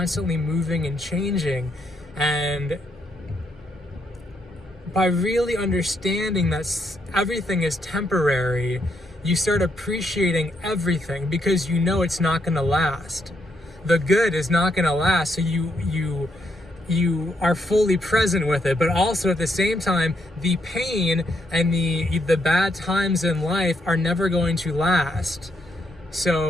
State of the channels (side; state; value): both; normal; correlation 0.77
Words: moving and changing. And by really understanding that everything is temporary, you start appreciating everything because you know it's not going to last. The good is not going to last, so you are fully present with it, but also at the same time, the pain and the bad times in life are never going to last.